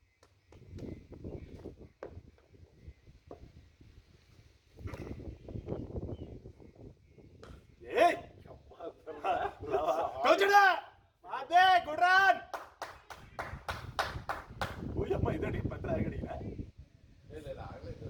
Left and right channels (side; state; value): both; identical; correlation 1.00